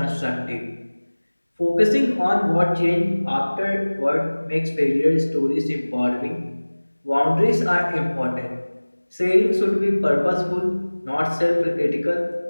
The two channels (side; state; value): both; inverted; correlation -1.00